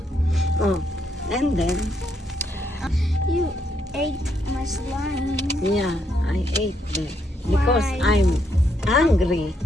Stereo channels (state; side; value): normal; both; correlation 0.76